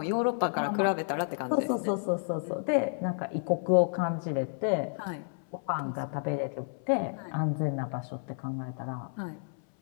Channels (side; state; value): right; silent; 57 dB below the other